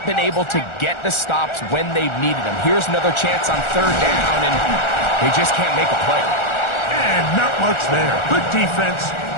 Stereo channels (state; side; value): late; right; 1.4 ms